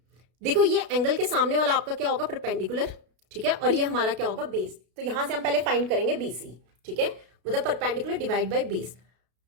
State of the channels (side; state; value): left; late; 33 ms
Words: देखो ये एंगल के सामने वाला आपका क्या होगा, परपेंडिकुलर। ठीक है, और ये हमारा क्या होगा, बेस। तो यहां से हम पहले फाइंड करेंगे BC। ठीक है, मतलब परपेंडिकुलर डिवाइड बाय बेस।